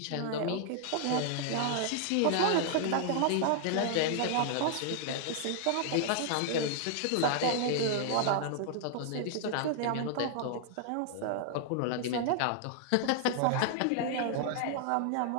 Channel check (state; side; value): different; both; correlation -0.01